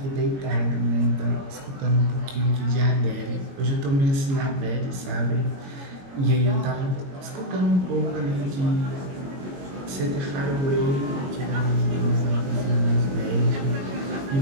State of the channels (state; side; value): late; left; 22 ms